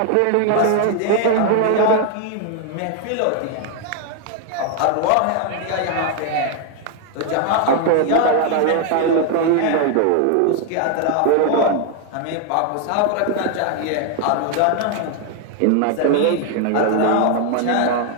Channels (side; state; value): both; different; correlation 0.01